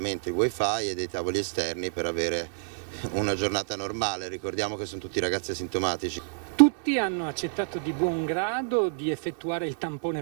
il wifi e dei tavoli esterni per avere una giornata normale. Ricordiamo che sono tutti ragazzi asintomatici. Tutti hanno accettato di buon grado di effettuare il tampone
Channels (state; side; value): silent; left; digital silence